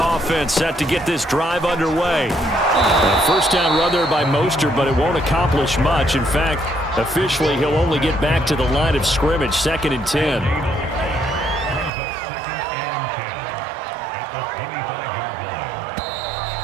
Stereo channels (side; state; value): left; drops out; at 11.9 s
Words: offense set to get this drive underway. A first down run there by Mostert, but it won't accomplish much. In fact, officially, he'll only get back to the line of scrimmage, 2nd and 10.